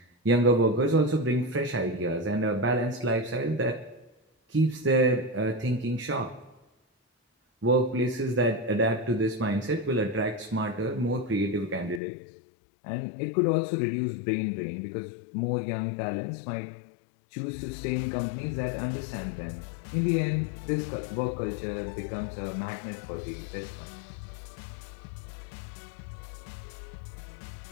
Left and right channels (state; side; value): drops out; right; at 12.0 s